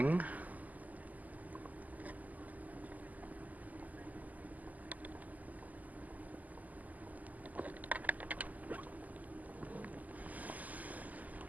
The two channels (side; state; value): left; late; 0.079 ms